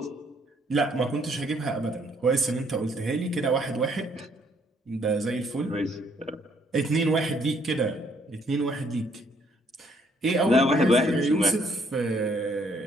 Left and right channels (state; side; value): normal; both; correlation 0.67